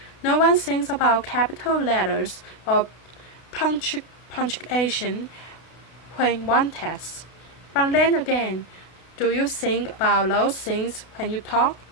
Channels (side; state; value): right; late; 32 ms